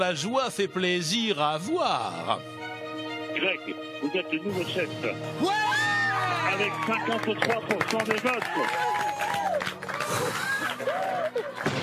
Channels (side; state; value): both; identical; correlation 1.00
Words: joie fait plaisir à voir. Greg, vous êtes le nouveau chef. Ouais, avec 53% des votes.